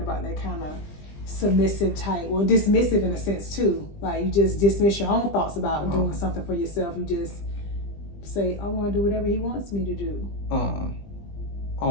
that kind of submissive type, well, dismissive in a sense too? Like you just dismiss your own thoughts about doing something for yourself. You just say, I want to do whatever he wants me to do.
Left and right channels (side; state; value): right; late; 20 ms